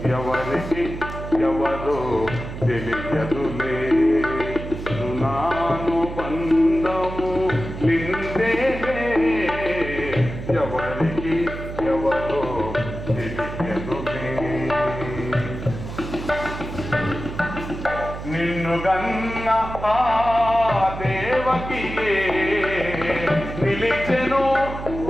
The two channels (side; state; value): right; noise; hum, 9 dB below the sound